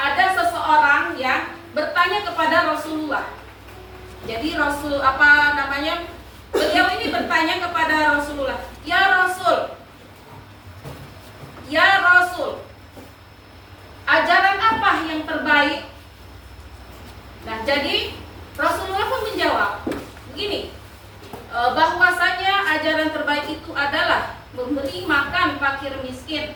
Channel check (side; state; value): both; identical; correlation 1.00